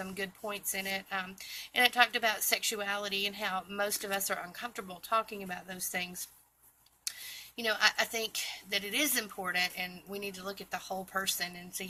good points in it. And it talked about sexuality and how most of us are uncomfortable talking about those things. I think that it is important, and we need to look at the whole person and see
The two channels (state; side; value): identical; both; correlation 1.00